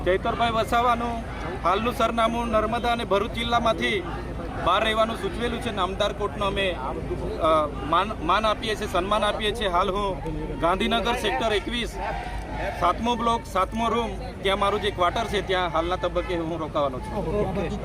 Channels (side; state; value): both; identical; correlation 1.00